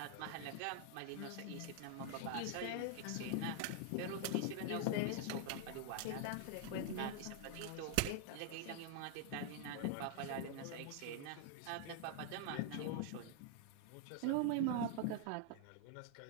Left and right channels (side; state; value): both; different; correlation 0.00